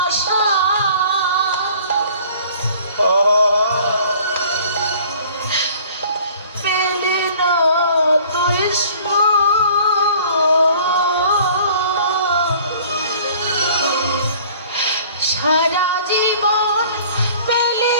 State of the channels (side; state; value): both; inverted; correlation -0.51